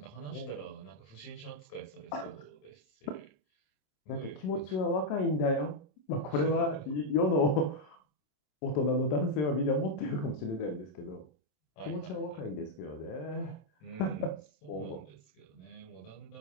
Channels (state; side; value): late; right; 27 ms